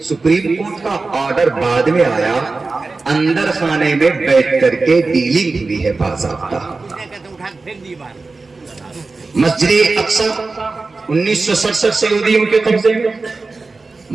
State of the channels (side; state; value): left; quieter; 3.8 dB